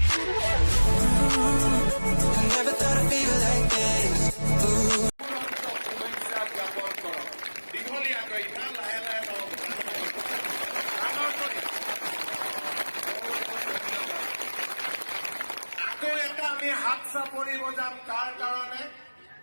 I never thought I'd feel like this. Ooh. আমি হাত চাপৰি বজাম কাৰ কাৰণে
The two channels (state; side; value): inverted; both; correlation -1.00